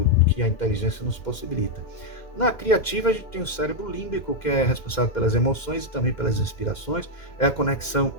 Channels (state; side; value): late; right; 2.1 ms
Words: que a inteligência nos possibilita. Na criativa, a gente tem o cérebro límbico, que é responsável pelas emoções e também pelas inspirações, é a conexão